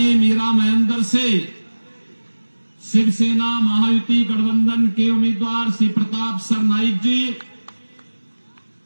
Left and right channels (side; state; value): both; inverted; correlation -1.00